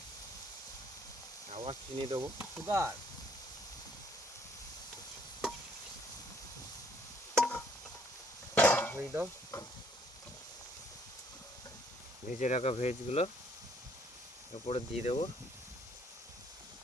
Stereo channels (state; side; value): normal; both; correlation 0.64